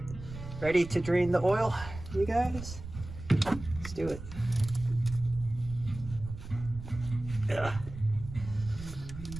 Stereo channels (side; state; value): right; noise; rumble, 12 dB below the sound